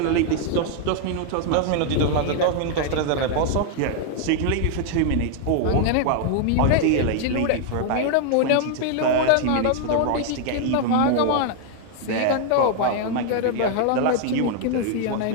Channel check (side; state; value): both; different; correlation 0.00